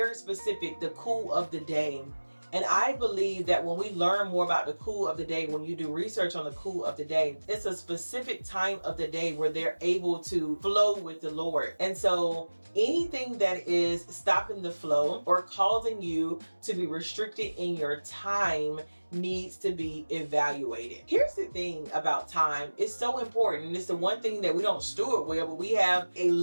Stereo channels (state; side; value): inverted; both; correlation -1.00